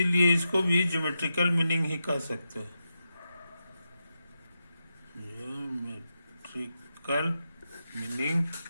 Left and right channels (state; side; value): inverted; both; correlation -0.88